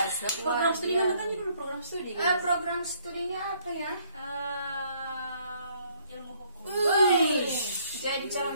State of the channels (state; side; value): inverted; both; correlation -0.65